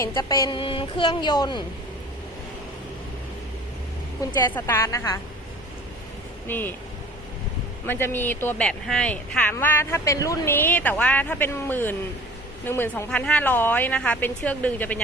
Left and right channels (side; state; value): both; normal; correlation 0.45